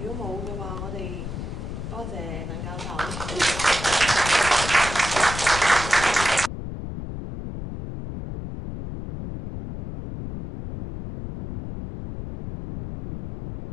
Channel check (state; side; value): noise; left; rumble, 7 dB below the sound